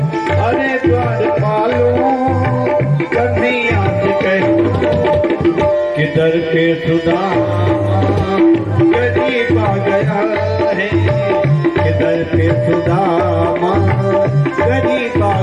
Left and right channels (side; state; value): right; noise; rumble, 30 dB below the sound